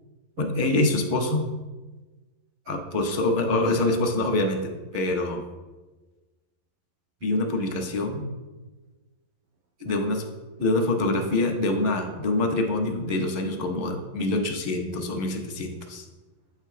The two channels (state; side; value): late; left; 11 ms